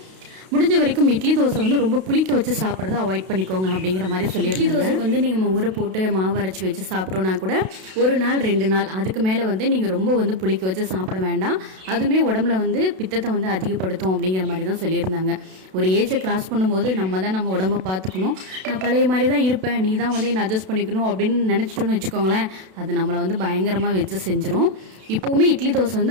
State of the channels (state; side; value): late; left; 32 ms